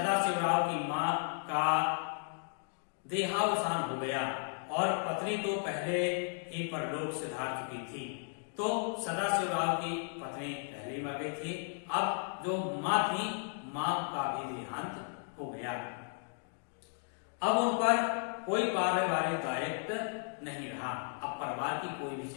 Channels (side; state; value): right; silent; 55 dB below the other